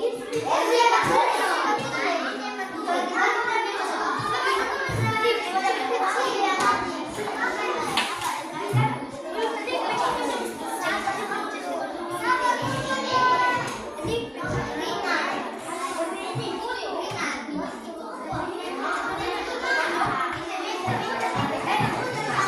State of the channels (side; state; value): both; identical; correlation 1.00